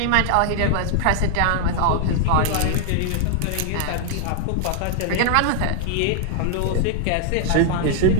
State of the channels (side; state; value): both; different; correlation 0.00